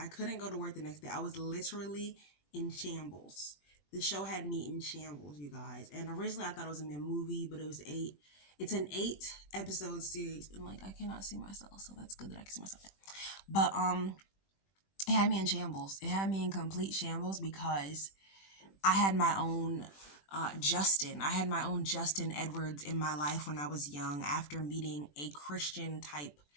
couldn't go to work the next day. I was literally in shambles. The show had me in shambles, you guys. And originally I thought it was gonna be a movie, but it was eight. It's an 8 episode series, and like I cannot see myself, so that's good that I can see myself. But it had me in shambles. It had me in complete shambles because I had my own Justin. I had my own Justin Edwards in my life when I was young after meeting a Christian type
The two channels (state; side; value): late; right; 21 ms